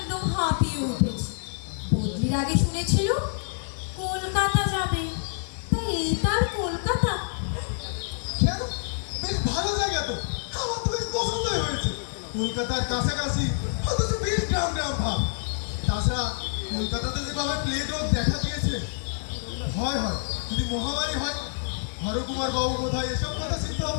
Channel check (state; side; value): silent; right; digital silence